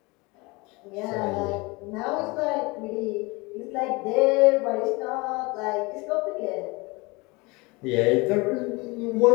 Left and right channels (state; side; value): quieter; right; 25.5 dB